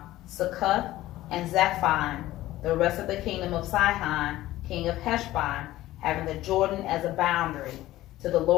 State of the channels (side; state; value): right; quieter; 15.8 dB